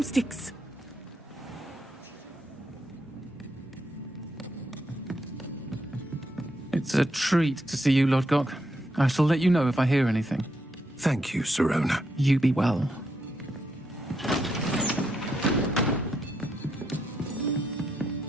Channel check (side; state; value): both; normal; correlation 0.79